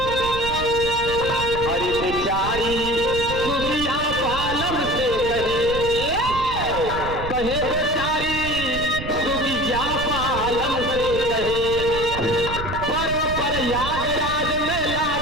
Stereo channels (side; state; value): right; noise; rumble, 8 dB below the sound